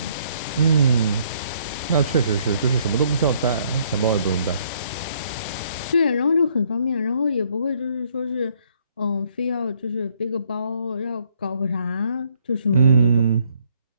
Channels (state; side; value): inverted; both; correlation -0.67